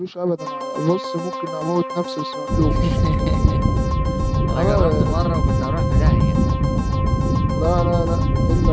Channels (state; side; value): identical; both; correlation 1.00